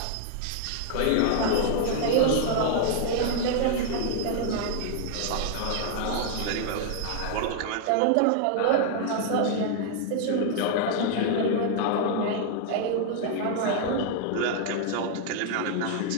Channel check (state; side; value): different; both; correlation -0.01